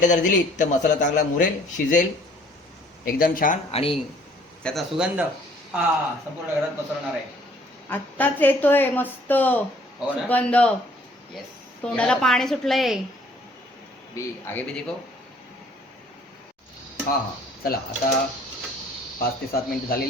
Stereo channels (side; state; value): both; normal; correlation 0.58